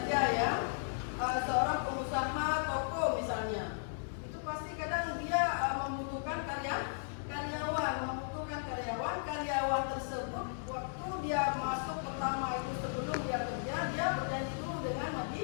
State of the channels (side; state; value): right; silent; 54 dB below the other